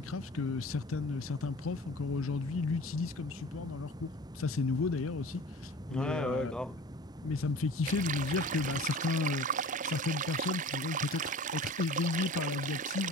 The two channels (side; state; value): both; normal; correlation 0.41